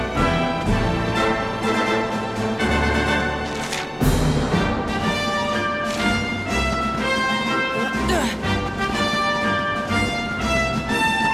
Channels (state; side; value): identical; both; correlation 1.00